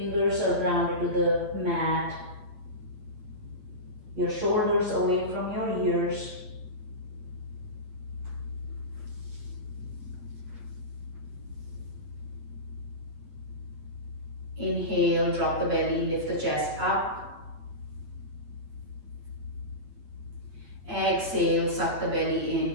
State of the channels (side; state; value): left; late; 8.3 ms